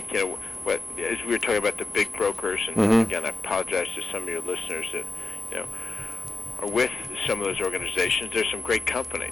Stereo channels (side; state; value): right; quieter; 3.1 dB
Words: as we were talking about the big brokers, and again, I apologize to some of your listeners that are with some of those organizations. There's some great